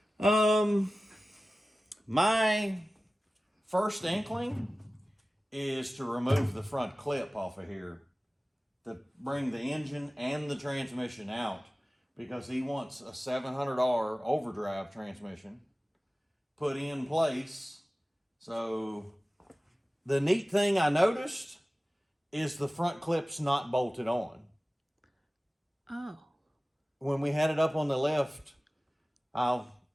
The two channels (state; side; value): normal; both; correlation 0.96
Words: My first inkling is to remove the front clip off of here to bring the engine and the transmission out, because he wants a $700 overdrive transmission put in place. So the neat thing I noticed is the front clip's not bolted on. Oh. When we had it up on the left, I'll